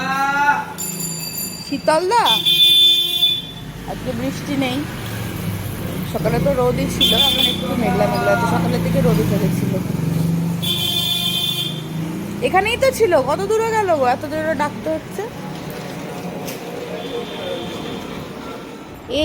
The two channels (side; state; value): both; identical; correlation 1.00